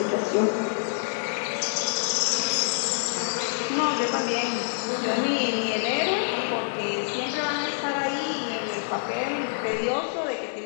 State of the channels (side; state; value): right; silent; digital silence